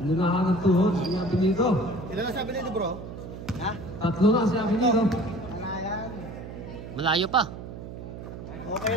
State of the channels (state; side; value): noise; right; hum, 11 dB below the sound